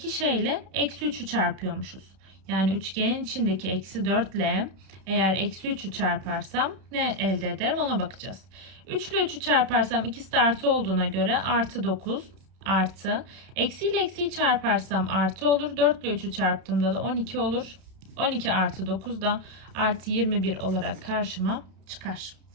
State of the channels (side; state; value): left; late; 31 ms